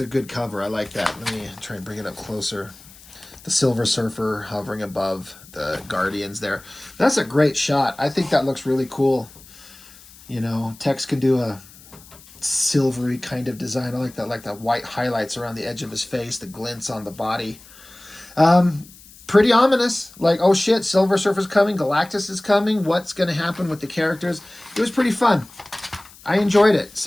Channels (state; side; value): noise; left; hiss, 22 dB below the sound